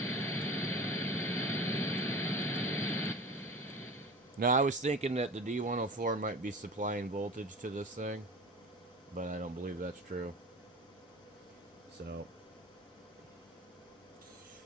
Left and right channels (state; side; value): normal; both; correlation 0.35